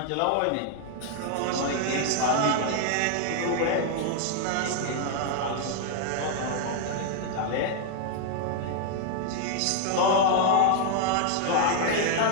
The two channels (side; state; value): both; different; correlation 0.00